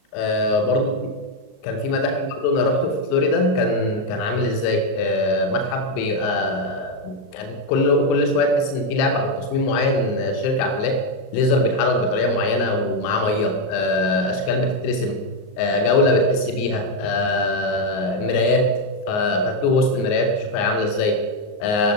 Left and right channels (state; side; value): late; right; 38 ms